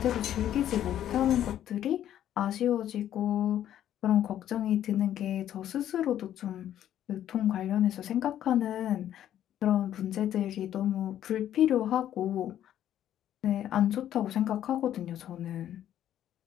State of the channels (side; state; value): right; quieter; 11.3 dB